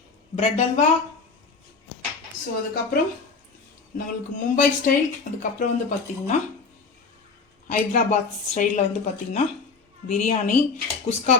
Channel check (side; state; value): right; quieter; 4.6 dB